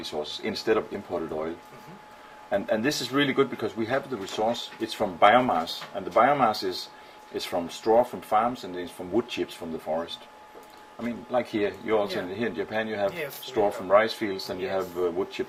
sources instead of imported oil. And this is really good because we have the resource. It's from biomass, and the biomass is from straw from farms, and it's from wood chips from the forest. I mean, like here, you also here in Japan, you have straw from rice fields, and you have wood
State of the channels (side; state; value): both; identical; correlation 1.00